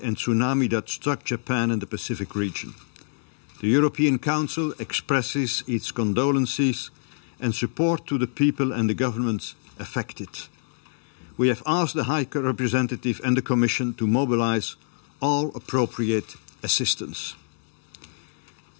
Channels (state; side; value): silent; right; digital silence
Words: and tsunami that struck Japan and the Pacific region. The European Council expresses its condolences and support to the people and the governments affected. We have asked the High Representative and the Commission to mobilise all appropriate assistance.